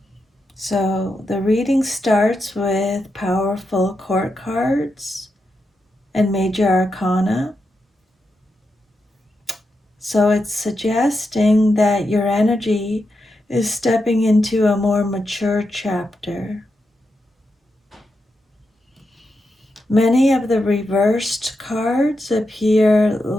So the reading starts with powerful court cards and major arcana. So it's suggesting that your energy is stepping into a more mature chapter. Many of the reversed cards appear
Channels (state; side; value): normal; both; correlation 0.86